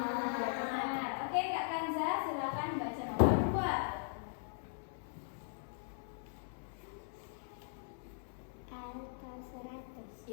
Ya, benar. Oke, Kak Kanza, silakan baca nomor 2. Alto 100.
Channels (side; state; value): right; silent; 51 dB below the other